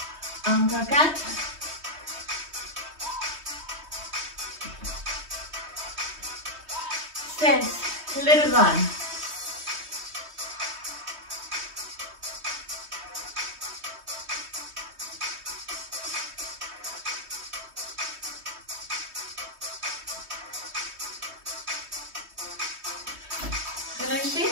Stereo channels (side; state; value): left; late; 3.2 ms